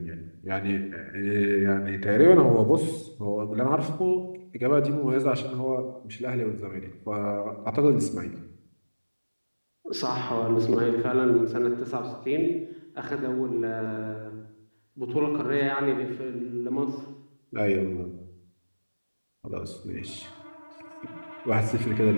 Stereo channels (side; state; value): both; inverted; correlation -1.00